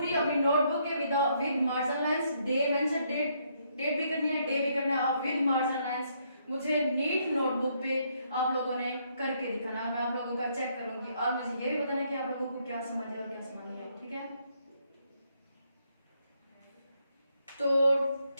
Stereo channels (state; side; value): inverted; both; correlation -0.73